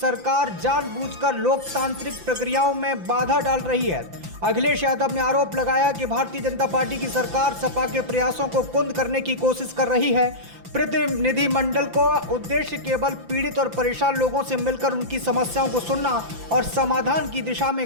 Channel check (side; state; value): left; late; 5.9 ms